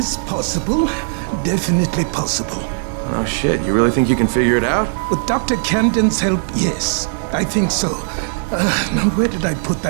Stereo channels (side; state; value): left; silent; digital silence